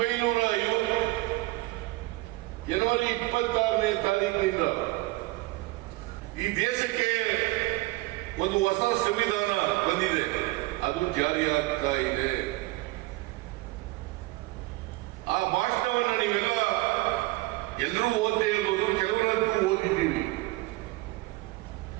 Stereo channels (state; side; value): quieter; left; 21.1 dB